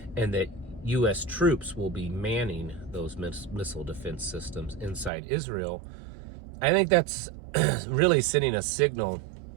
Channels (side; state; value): left; drops out; at 5.1 s